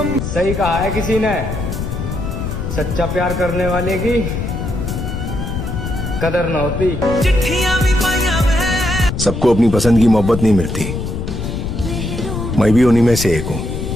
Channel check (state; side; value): noise; left; rumble, 4 dB below the sound